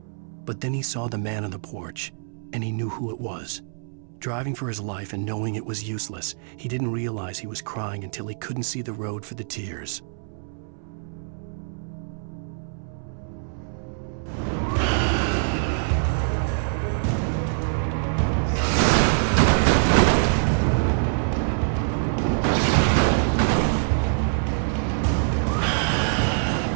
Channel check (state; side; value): silent; left; 62 dB below the other